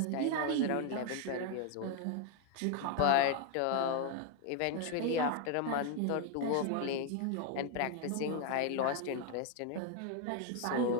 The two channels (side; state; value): both; different; correlation 0.01